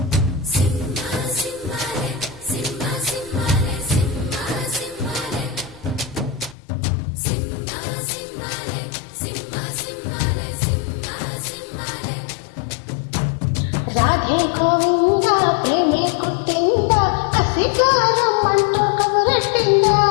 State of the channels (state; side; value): drops out; right; at 6.6 s